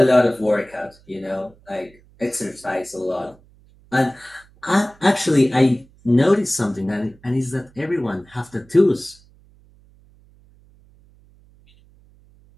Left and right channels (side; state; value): right; noise; hum, 29 dB below the sound